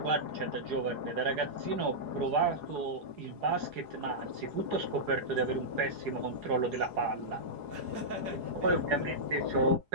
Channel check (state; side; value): late; left; 4.8 ms